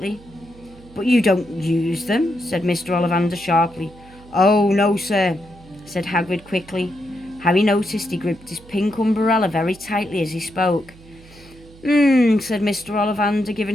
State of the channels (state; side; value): noise; right; hum, 23 dB below the sound